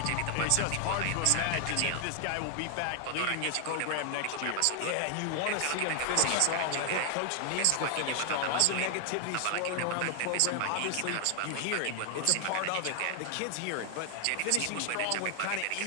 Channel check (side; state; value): both; different; correlation 0.00